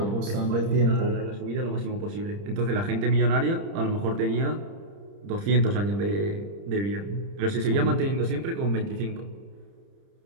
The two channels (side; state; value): left; late; 30 ms